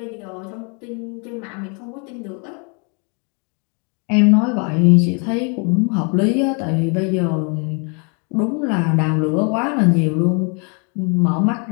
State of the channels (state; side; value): quieter; right; 36.0 dB